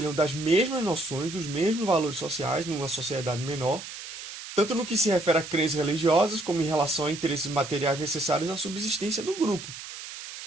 das mesmas noções, dos mesmos valores sociais numa sociedade menor, tanto no que se refere a crenças religiosas, como em relação a interesses materiais necessários à subsistência do grupo,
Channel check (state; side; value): noise; right; hiss, 11 dB below the sound